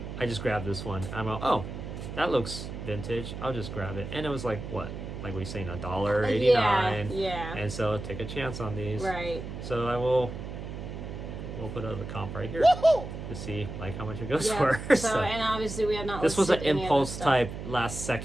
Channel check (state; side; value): noise; right; hum, 8 dB below the sound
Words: just grabbed this one. I'm like, oh, that looks vintage. I'll just grab it. And it was like, what? Like we saying $1.89. Yeah. And so take a chance on these. Right. So we'll put a comp right here to see like how much it goes for. So and obviously we have not. This was an impulse type last